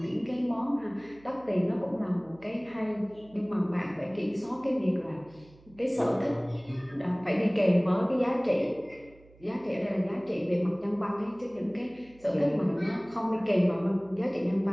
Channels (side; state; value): right; noise; hum, 26 dB below the sound